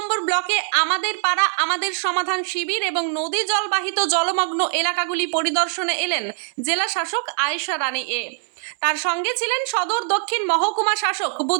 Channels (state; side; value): silent; left; 64 dB below the other